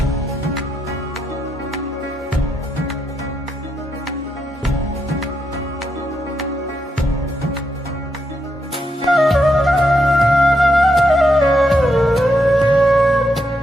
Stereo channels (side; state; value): both; normal; correlation 0.81